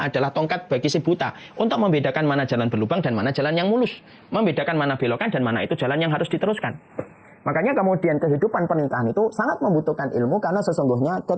tongkat bagi si buta, untuk membedakan mana jalan berlubang dan mana jalan yang mulus. Membedakan mana belokan dan mana itu jalan yang harus diteruskan. Makanya kemudian kehidupan pernikahan itu sangat membutuhkan ilmu, karena sesungguhnya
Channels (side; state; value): both; identical; correlation 1.00